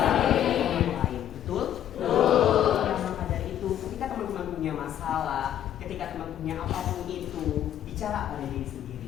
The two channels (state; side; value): quieter; right; 11.0 dB